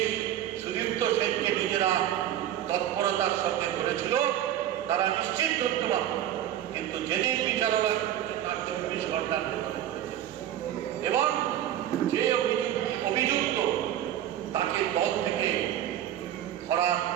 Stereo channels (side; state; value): left; quieter; 11.7 dB